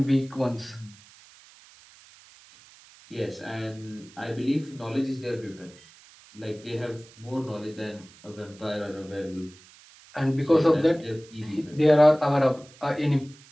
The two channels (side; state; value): right; noise; hiss, 24 dB below the sound